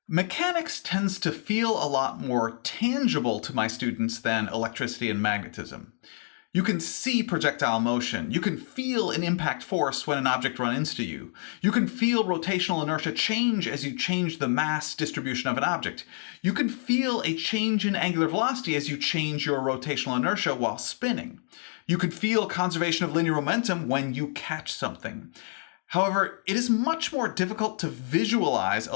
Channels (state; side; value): silent; right; 57 dB below the other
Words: Mechanics tends to feel a lot more tangible to my students than electricity and magnetism. You can see projectile motion. You can feel an impact force when an object runs into you. You can feel rotational inertia change as you change the mass distribution of an object. You can feel a change in angular velocity as you change your rotational inertia while spinning. You can feel conservation of linear momentum when you catch something. However, it is much more difficult to visualize